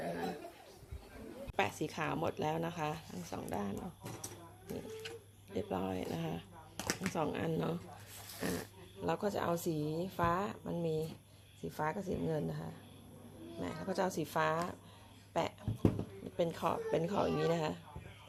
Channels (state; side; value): identical; both; correlation 1.00